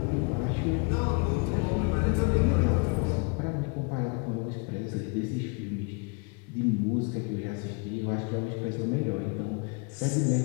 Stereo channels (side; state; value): right; quieter; 32.9 dB